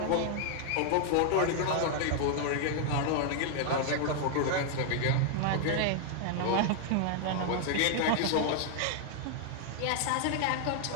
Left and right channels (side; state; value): both; different; correlation 0.00